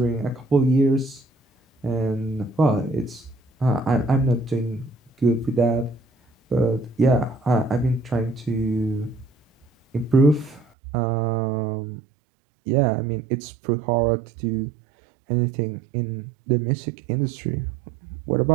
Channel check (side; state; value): left; drops out; at 10.7 s